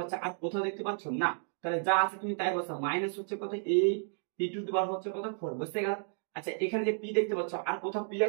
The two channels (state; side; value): silent; left; digital silence